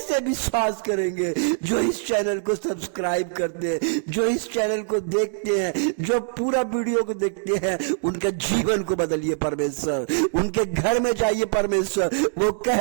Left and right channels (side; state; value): left; silent; 63 dB below the other